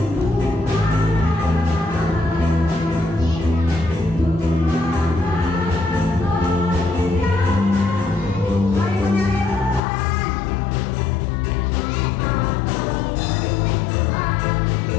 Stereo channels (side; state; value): right; drops out; at 9.8 s